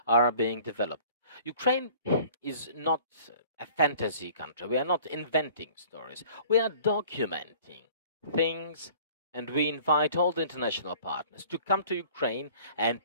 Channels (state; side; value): inverted; both; correlation -0.50